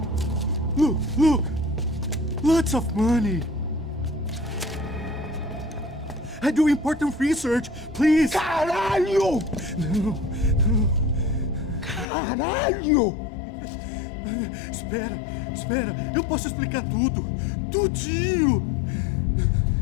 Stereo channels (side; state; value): right; drops out; at 12.1 s